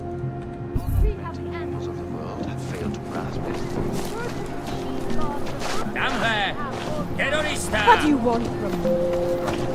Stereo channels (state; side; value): identical; both; correlation 1.00